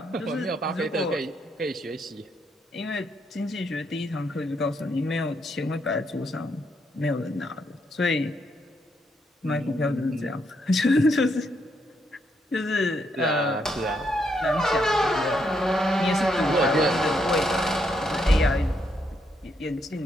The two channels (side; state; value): both; normal; correlation 0.77